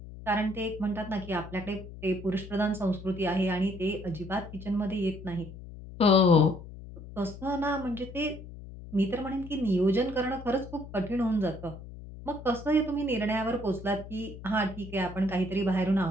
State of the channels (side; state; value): left; noise; hum, 14 dB below the sound